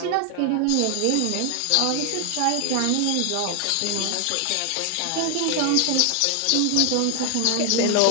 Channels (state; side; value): different; both; correlation 0.00